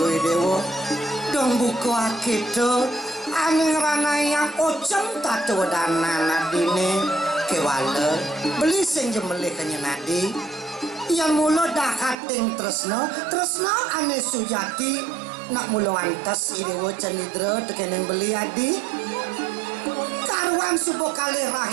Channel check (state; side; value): drops out; left; at 12.2 s